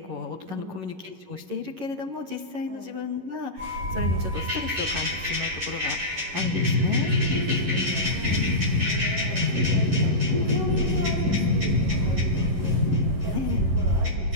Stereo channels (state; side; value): late; left; 11 ms